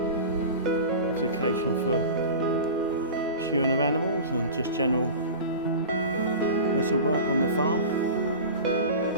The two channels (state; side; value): inverted; both; correlation -0.33